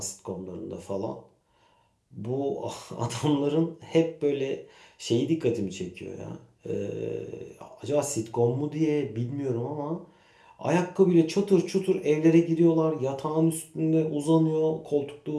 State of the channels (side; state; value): both; identical; correlation 1.00